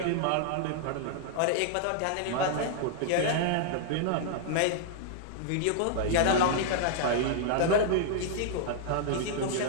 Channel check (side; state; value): both; different; correlation -0.01